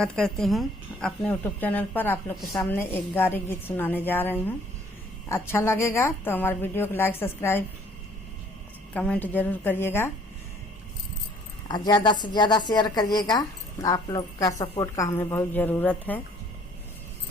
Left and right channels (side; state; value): both; normal; correlation 0.58